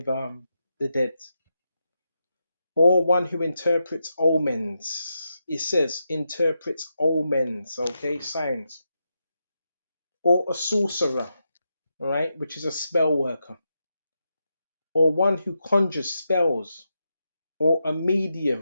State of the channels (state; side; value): inverted; both; correlation -0.86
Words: the dead. Or one who interprets omens. It says interprets omens, okay, signs. Or a sorcerer, right, which is a spell worker. Or one who conjures spells. Or a